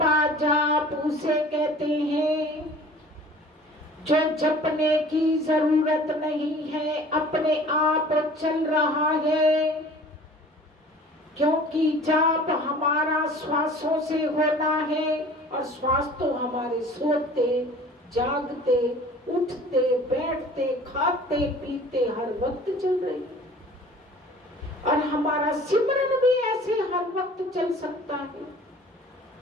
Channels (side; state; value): both; normal; correlation 0.46